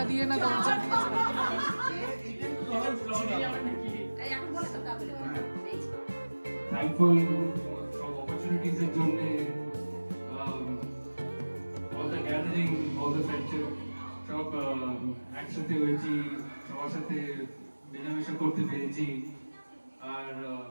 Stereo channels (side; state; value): both; inverted; correlation -1.00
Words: দিয়ে না দরজা দিয়ে। Thankful for opportunities এর জন্য, all the gathering, all the friendship, সব একসাথে হয়েছি, সবার সাথে মেলামেশা করতে পেরেছি, আর